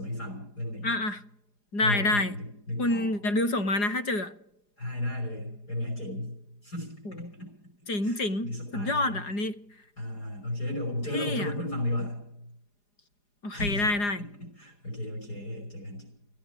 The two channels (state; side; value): late; right; 4.9 ms